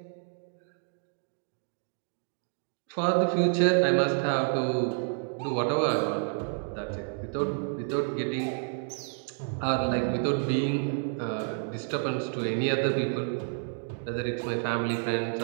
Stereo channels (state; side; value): silent; left; 58 dB below the other